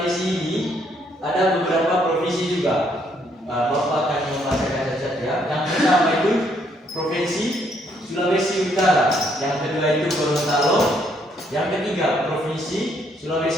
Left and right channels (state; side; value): normal; both; correlation 0.70